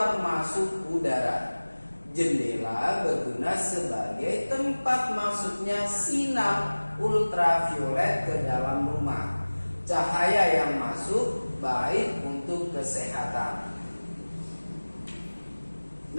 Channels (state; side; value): inverted; both; correlation -1.00